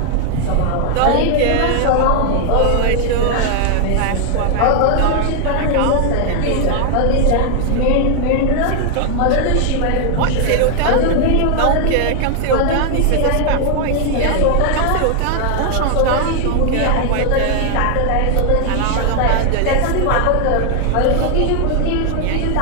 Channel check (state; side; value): different; both; correlation 0.00